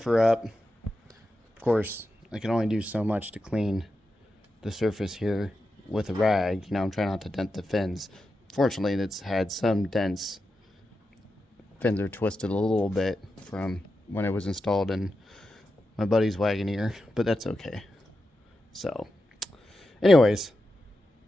her up. Of course, I can only do so much to clean the surface here with a rag. I'm trying not to dent the fins. Fortunately, it's had some dents. Fins are twisted a little bit from when it was installed in my buddy's Wagoneer, but that's okay. So, anyways,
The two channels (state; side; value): normal; both; correlation 0.89